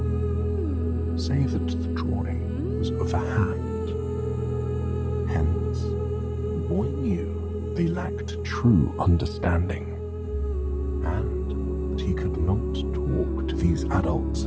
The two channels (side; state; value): both; identical; correlation 1.00